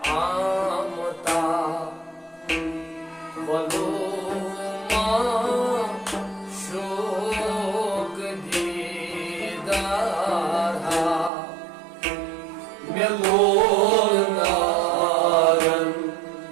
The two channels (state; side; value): drops out; left; at 11.3 s